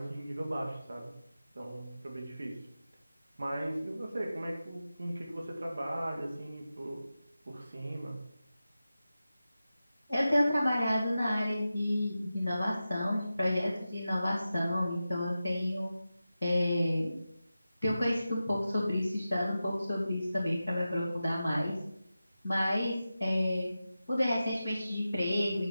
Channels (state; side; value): inverted; both; correlation -0.93